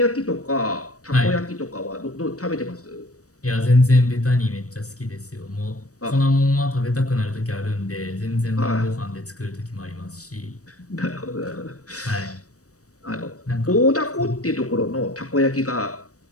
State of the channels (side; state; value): right; late; 0.66 ms